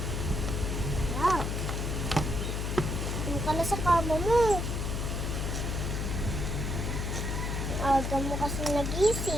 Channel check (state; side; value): noise; left; hum, 1 dB below the sound